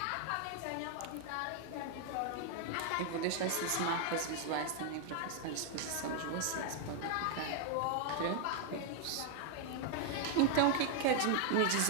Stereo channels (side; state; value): both; different; correlation 0.00